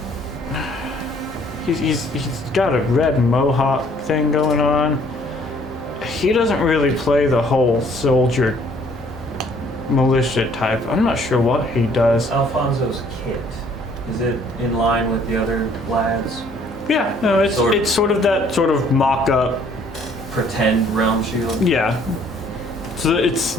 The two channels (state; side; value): normal; both; correlation 0.60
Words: He's got a red mohawk thing going on. He doesn't really play the whole soldier militia type. I'm not sure what he does. Alfonso's kit, is it in line with the other lads? Yeah, no, it's sort of that sort of mock-up. Pretend realm shield? Yeah. So it's